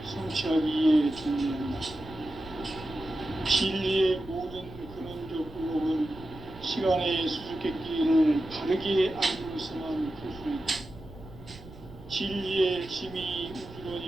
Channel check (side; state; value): right; noise; rumble, 17 dB below the sound